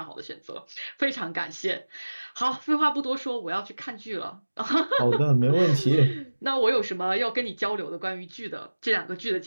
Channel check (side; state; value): both; inverted; correlation -1.00